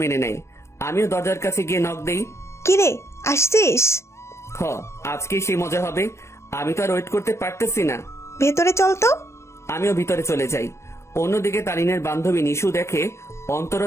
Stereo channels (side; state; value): right; late; 0.13 ms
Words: মেনে নেয়। আমিও দরজার কাছে গিয়ে নক দেই। কিরে, আসছিস? হ, আজকেই সেই মজা হবে। আমি তো আর ওয়েট করতে পারতেছি না। ভেতরে চল তো। আমিও ভিতরে চলে যাই। অন্যদিকে তারিনের বান্ধবী নিশু দেখে অন্তর ও